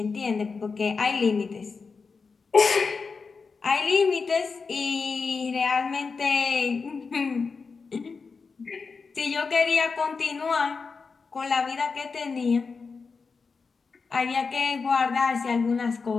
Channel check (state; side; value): quieter; right; 4.8 dB